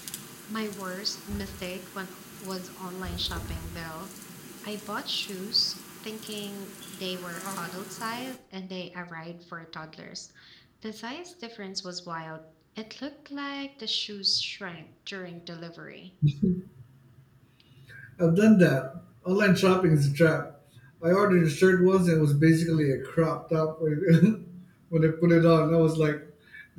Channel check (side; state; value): both; identical; correlation 1.00